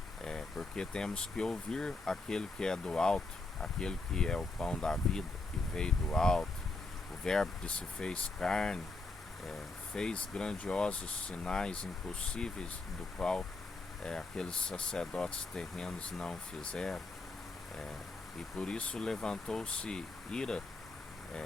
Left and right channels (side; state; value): right; quieter; 3.3 dB